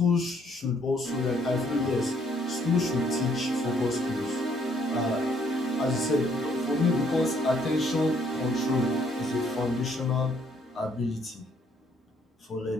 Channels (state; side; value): normal; both; correlation 0.66